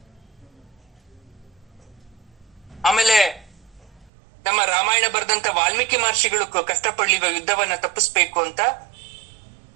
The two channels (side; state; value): left; drops out; at 4.1 s